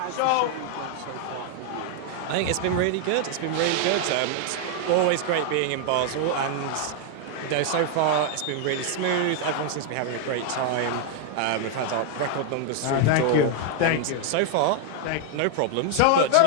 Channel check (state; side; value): different; both; correlation 0.00